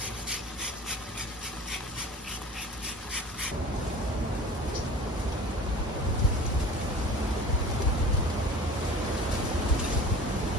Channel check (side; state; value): both; normal; correlation 0.41